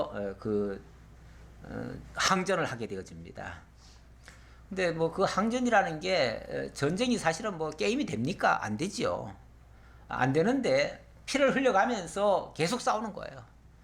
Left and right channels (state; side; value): identical; both; correlation 1.00